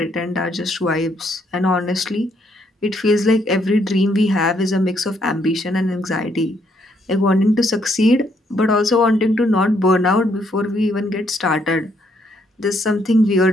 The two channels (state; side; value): normal; both; correlation 0.72